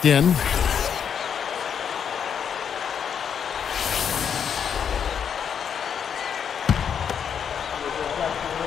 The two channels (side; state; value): right; quieter; 7.7 dB